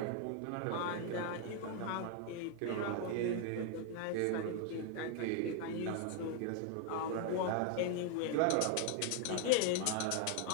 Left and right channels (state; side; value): different; both; correlation 0.00